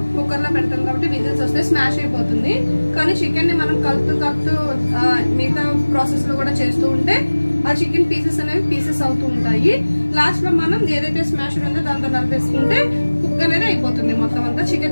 కుక్కర్ లో పెడతాం కాబట్టి విజిల్స్ వస్తే స్మాష్ అయిపోతుంది. కానీ చికెన్ ని మనం కలుపుతూ మిగతా ప్రాసెస్ లో కూడా చేస్తూ ఉంటే ఆ చికెన్ పీసెస్ అనేవి పీసెస్ అవుతూ ఉంటాయి. లాస్ట్ లో మనం ఏదైతే స్మాష్ ఉందో దాంతో కలిపేసుకుంటే కుక్ అనేది అయిపోతుంది, మొత్తం అంతా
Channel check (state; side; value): inverted; both; correlation -1.00